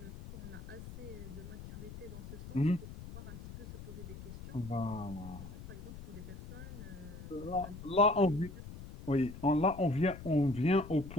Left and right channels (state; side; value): noise; left; rumble, 12 dB below the sound